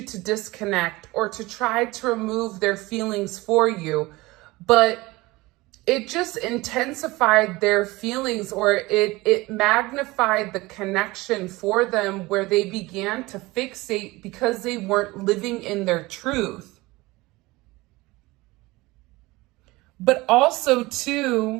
to disconnect, or to try to remove their feelings for you. But it just intensified their feelings, or it magnified the connection for them, where they began to fixate because they weren't living in their truth. But also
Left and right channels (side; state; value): left; quieter; 21.1 dB